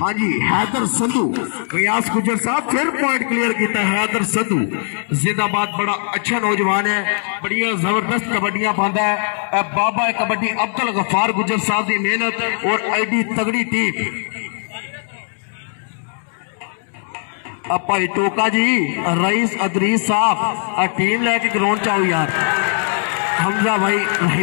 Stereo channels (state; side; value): silent; right; 66 dB below the other